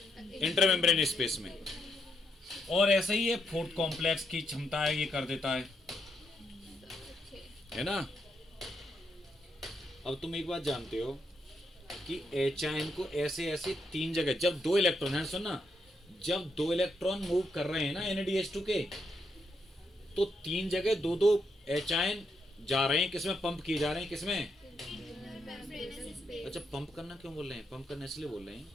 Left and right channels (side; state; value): both; normal; correlation 0.79